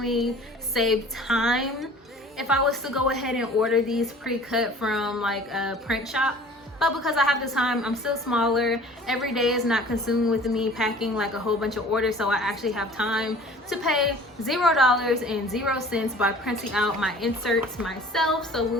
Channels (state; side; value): normal; both; correlation 0.47